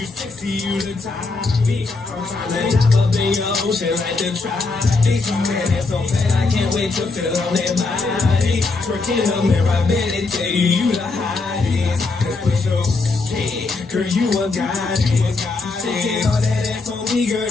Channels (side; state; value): right; quieter; 3.8 dB